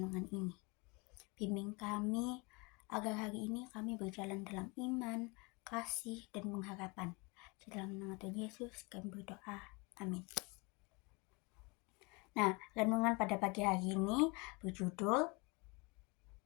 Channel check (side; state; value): right; quieter; 28.4 dB